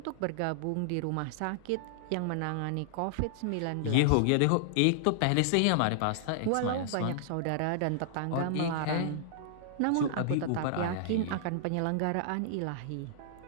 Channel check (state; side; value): different; both; correlation -0.01